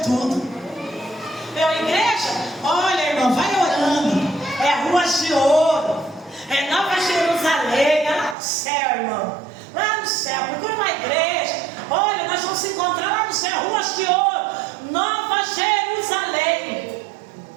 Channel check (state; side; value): drops out; left; at 8.3 s